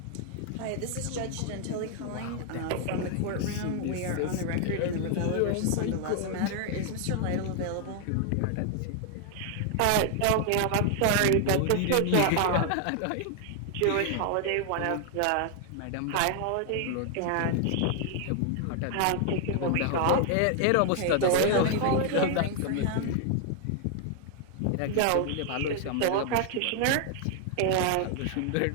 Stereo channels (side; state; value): both; different; correlation 0.00